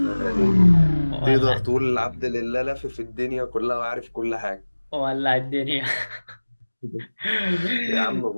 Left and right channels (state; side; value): inverted; both; correlation -1.00